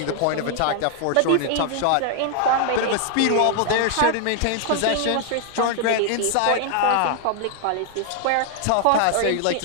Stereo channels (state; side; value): different; both; correlation 0.00